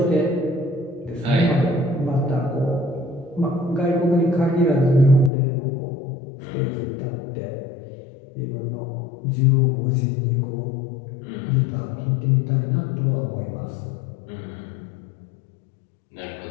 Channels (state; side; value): drops out; right; at 5.3 s